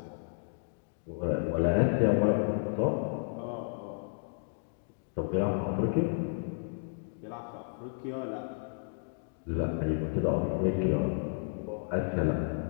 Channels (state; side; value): silent; right; digital silence